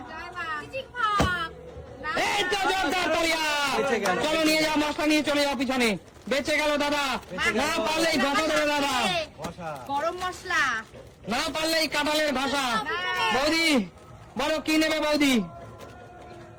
জয় মা। এই তো জোরদার তালিয়া। চলো নিয়ে যাও, মশলা নিয়ে চলে যাও পিছনে। বেঁচে গেল দাদা, না পারলেই ঘষা দেবে দাদা। গরম মশলা, না পারলেই কাঁঠালের ঘষা। বৌদি বলো কি নেবে বৌদি?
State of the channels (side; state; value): both; identical; correlation 1.00